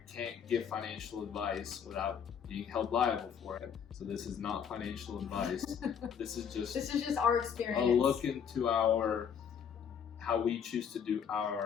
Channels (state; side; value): quieter; right; 7.6 dB